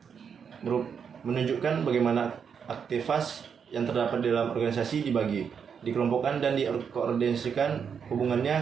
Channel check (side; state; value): left; quieter; 6.9 dB